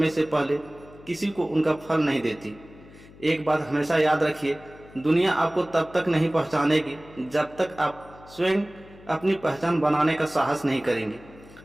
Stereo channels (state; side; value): noise; left; hum, 22 dB below the sound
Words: से पहले किसी को उनका फल नहीं देती। एक बात हमेशा याद रखिए, दुनिया आपको तब तक नहीं पहचानेगी जब तक आप स्वयं अपनी पहचान बनाने का साहस नहीं करेंगे।